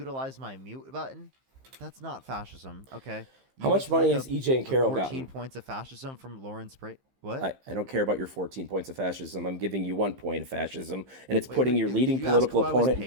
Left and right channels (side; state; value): left; late; 15 ms